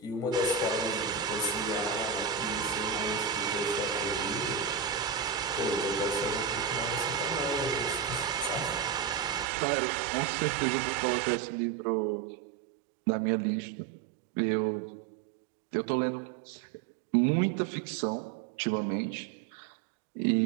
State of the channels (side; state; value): left; drops out; at 9.5 s